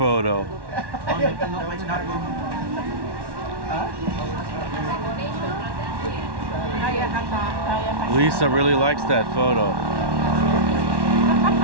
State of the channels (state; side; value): late; left; 1.1 ms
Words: Lisa really likes that photo.